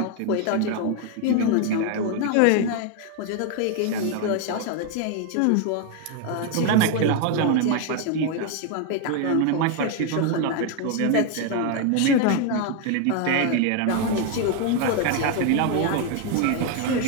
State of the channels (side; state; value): both; different; correlation 0.01